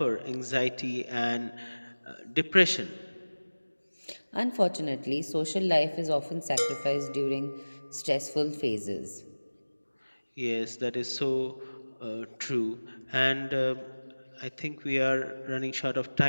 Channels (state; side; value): inverted; both; correlation -1.00